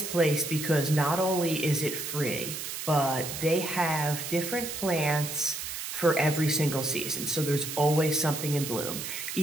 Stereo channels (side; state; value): right; noise; hiss, 6 dB below the sound